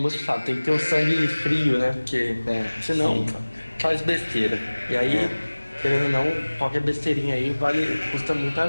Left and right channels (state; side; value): inverted; both; correlation -1.00